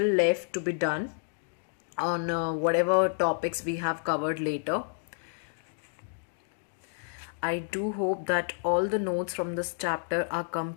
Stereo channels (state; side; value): silent; right; digital silence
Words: left to be done on whatever topics we have covered later. I do hope that all the notes from this chapter are